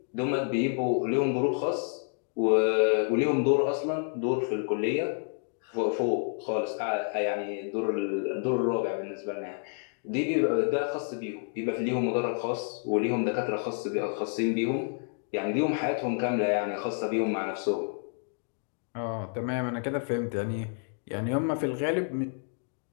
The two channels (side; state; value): right; silent; 58 dB below the other